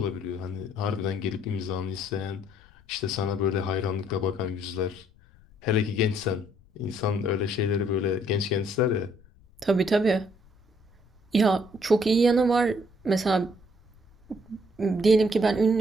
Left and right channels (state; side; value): noise; left; rumble, 28 dB below the sound